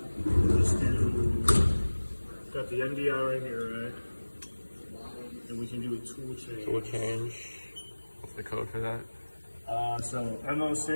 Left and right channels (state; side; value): inverted; both; correlation -1.00